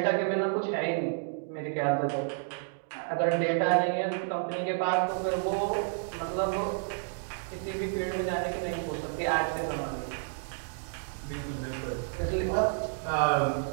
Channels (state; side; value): silent; left; digital silence